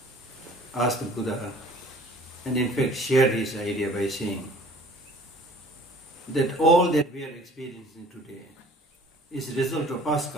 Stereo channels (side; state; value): both; normal; correlation 0.50